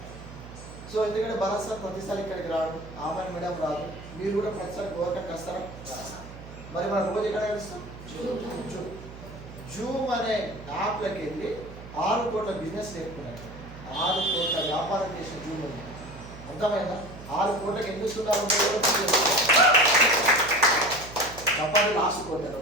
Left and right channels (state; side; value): noise; right; hum, 15 dB below the sound